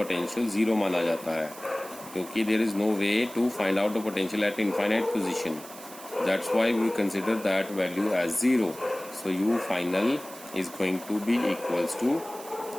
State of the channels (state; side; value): noise; right; hiss, 16 dB below the sound